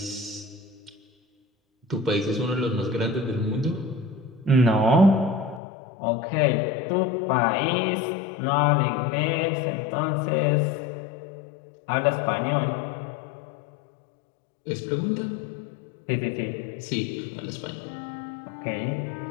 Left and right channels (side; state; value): right; drops out; at 5.6 s